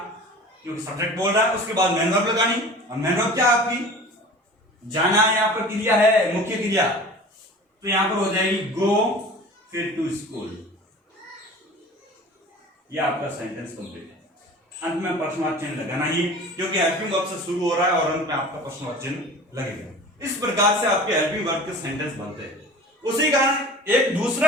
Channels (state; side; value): normal; both; correlation 0.40